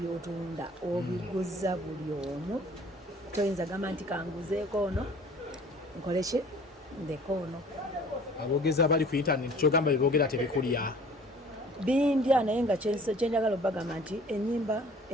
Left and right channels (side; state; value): both; normal; correlation 0.49